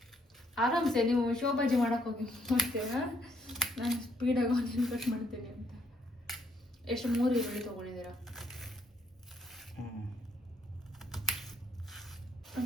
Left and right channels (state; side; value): normal; both; correlation 0.70